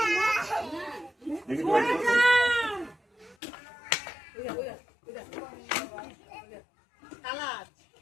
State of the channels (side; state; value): right; drops out; at 3.4 s